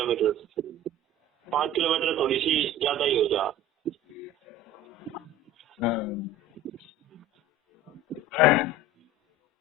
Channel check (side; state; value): both; normal; correlation 0.39